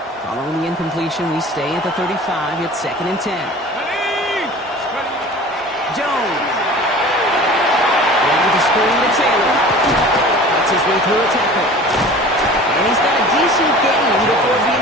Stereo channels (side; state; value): both; normal; correlation 0.42